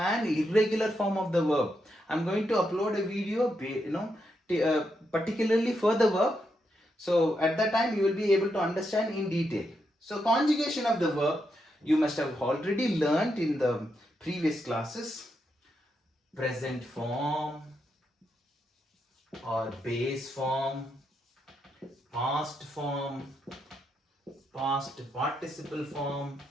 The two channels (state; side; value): normal; both; correlation 0.82